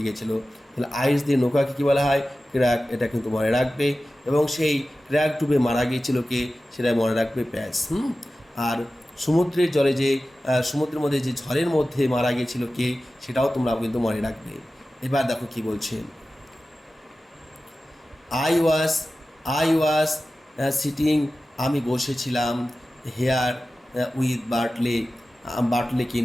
গিয়েছিল। তাহলে আইরিশদের নৌকাকে কী বলা হয়? ক্র্যাক, এটা কিন্তু মনে রাখবে। এবং সেই ক্র্যাক ডুবে মারা গিয়েছিল কে? সেটা মনে রাখবে প্যাচ। আর সমুদ্রের জলে যে সমুদ্রের মধ্যে যে ঝড়ের মধ্যে মারা গিয়েছিল কে? সেটাও তোমরা কিন্তু মনে রাখবে। এবার দেখো কি বলছে, আই ওয়াজ সিটিং, আমি বসেছিলাম, হেয়ার উইথ বার্টলেকে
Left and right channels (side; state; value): both; normal; correlation 0.95